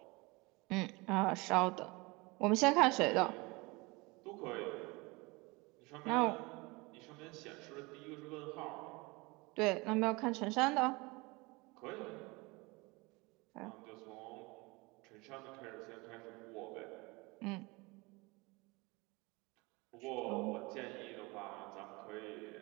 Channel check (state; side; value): quieter; left; 25.1 dB